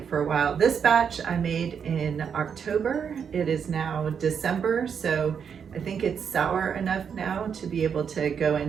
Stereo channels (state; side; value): quieter; left; 7.1 dB